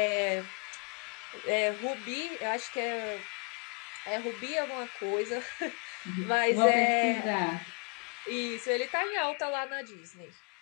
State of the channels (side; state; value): right; quieter; 37.6 dB